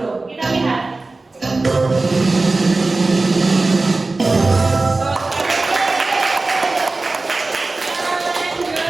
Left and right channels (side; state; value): left; quieter; 3.4 dB